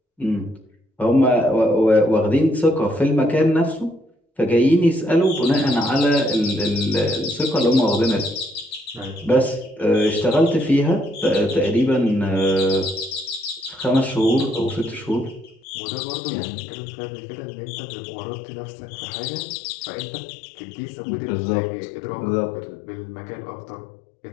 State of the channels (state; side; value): drops out; right; at 15.6 s